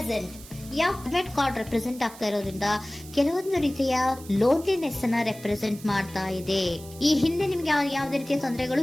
red card represent ಆಗ್ತಾ ಇರೋದ್ರಿಂದ ಕೆಲವೊಂದು ರೀತಿಯ ಲೋನ್ಲಿನೆಸ್ ಅನ್ನ ರೆಪ್ರೆಸೆಂಟ್ ಮಾಡ್ತಾ ಇದೆ. ಈ ಹಿಂದೆ ನಿಮ್ಗೆ ಯಾವುದೇ ರೀತಿಯ ತೊಂದರೆಗಳು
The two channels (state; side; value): noise; right; hiss, 18 dB below the sound